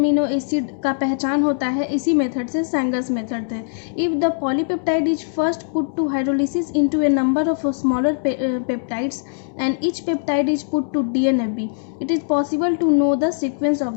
एसिड का पहचान होता है इसी मेथड से, सैंगर्स मेथड से। If the polypeptide is first put to hydrolysis into a number of smaller peptides and each peptide is put to DNFB, it is possible to know the sequence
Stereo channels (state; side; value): silent; right; digital silence